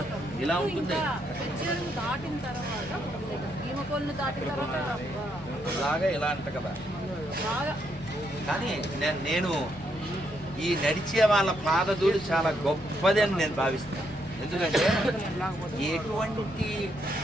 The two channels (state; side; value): normal; both; correlation 0.76